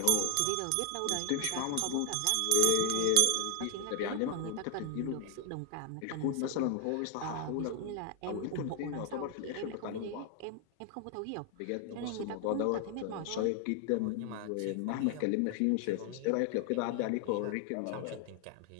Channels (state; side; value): different; both; correlation 0.00